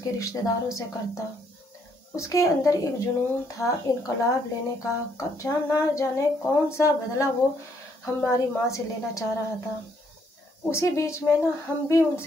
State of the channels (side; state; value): both; normal; correlation 0.70